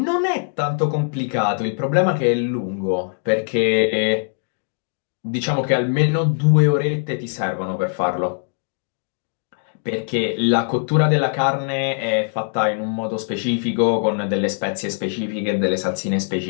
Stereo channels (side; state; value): right; silent; 65 dB below the other